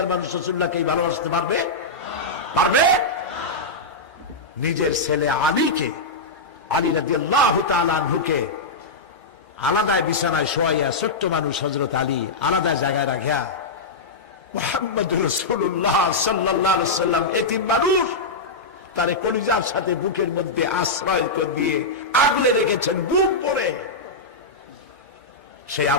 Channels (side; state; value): right; quieter; 3.2 dB